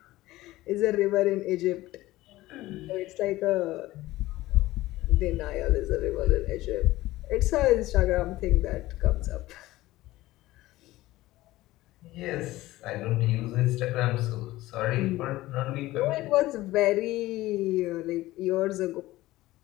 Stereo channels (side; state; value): right; quieter; 17.3 dB